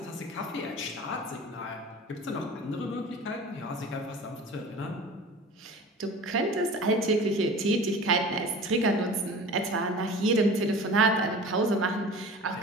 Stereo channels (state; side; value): normal; both; correlation 0.39